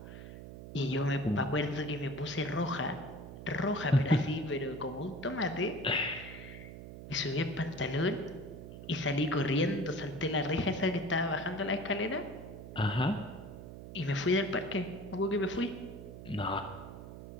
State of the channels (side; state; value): right; noise; hum, 12 dB below the sound